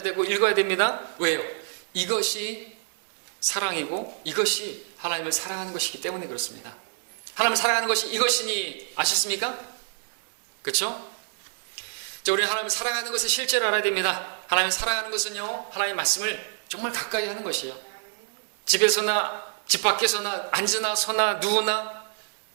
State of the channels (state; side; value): silent; left; 60 dB below the other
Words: 되고 읽어야 됩니다. 왜요? 이것이 사랑이고 이것이 하나님을 사랑하는 것이기 때문에 그렇습니다. 하나님을 사랑하는 것이 이것이니 아셨습니까? 그렇죠? 자, 우리는 하나님을 사랑하는 것의 실제를 알아야 됩니다. 하나님을 사랑하는 것은요, 하나님의 말씀을 정말 가까이 하는 것이에요. 집에서나 집 밖에서나 앉으나 서나 누우나